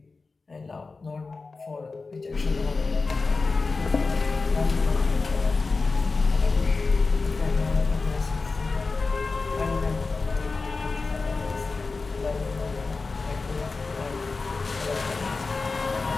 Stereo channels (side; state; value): right; quieter; 4.0 dB